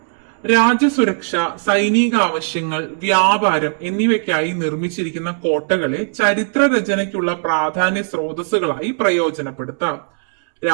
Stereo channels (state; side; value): silent; left; 67 dB below the other